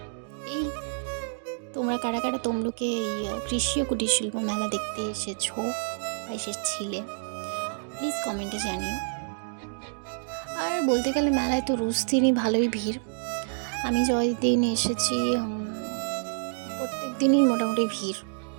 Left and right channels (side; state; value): left; silent; digital silence